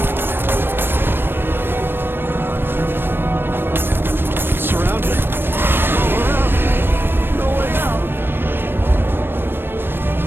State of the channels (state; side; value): late; left; 0.099 ms